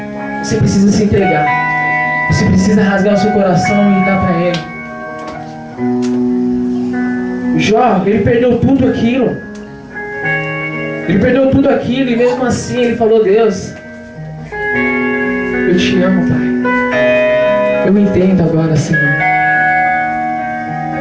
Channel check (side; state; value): both; identical; correlation 1.00